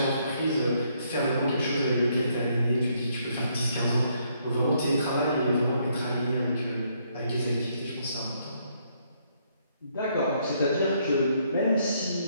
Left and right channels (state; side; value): inverted; both; correlation -0.71